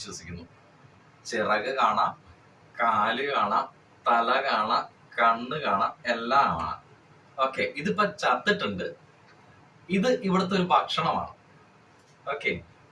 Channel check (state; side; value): identical; both; correlation 1.00